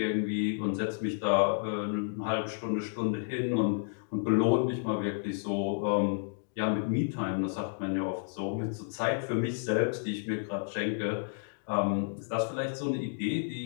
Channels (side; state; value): right; silent; digital silence